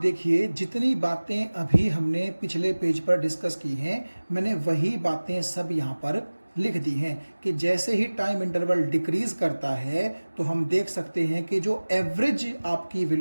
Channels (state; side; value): inverted; both; correlation -1.00